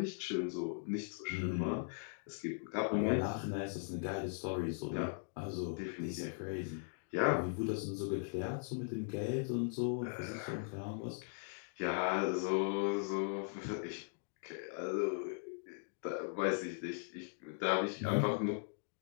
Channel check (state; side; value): silent; right; digital silence